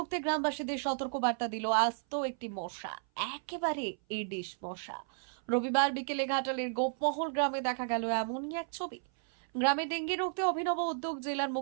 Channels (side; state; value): left; silent; 56 dB below the other